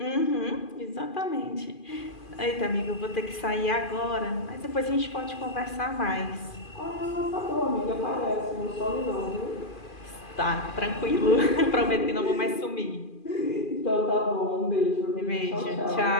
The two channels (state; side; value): late; right; 2.4 ms